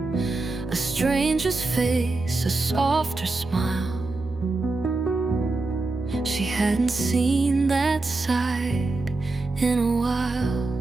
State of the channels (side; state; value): left; quieter; 3.3 dB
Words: A stranger's face, a softer smile. She hadn't seen that side in a while.